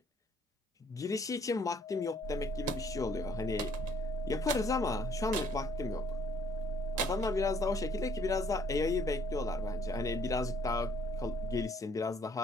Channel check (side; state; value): both; normal; correlation 0.62